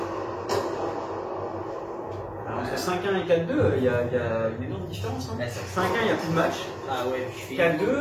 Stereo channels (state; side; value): identical; both; correlation 1.00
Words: Alors, entre 5-1 et 4-2, il y a une énorme différence. Hein. Ouais, ça- 5-1, il n'y a plus de match. Ah ouais, je fais